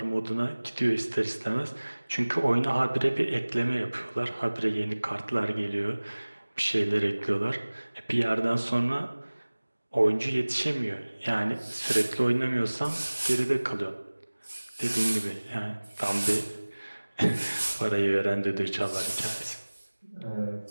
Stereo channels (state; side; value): inverted; both; correlation -1.00